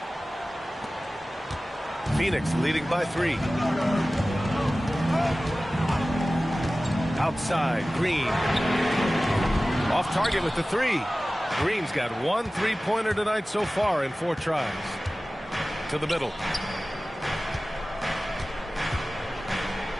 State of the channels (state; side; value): normal; both; correlation 0.97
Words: Phoenix leading by 3. Outside, Green. Off target with the 3. Green's got 1 3-pointer tonight so far in 4 tries. To the middle.